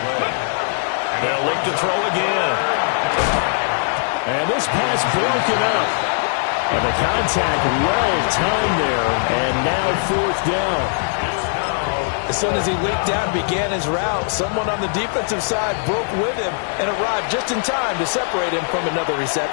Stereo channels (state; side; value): silent; right; digital silence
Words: They'll look to throw again. And this pass broken up. And the contact well-timed there, and now 4th down. As soon as he leaped out and began his route, someone on the defensive side broke with him and arrived just in time to separate him from another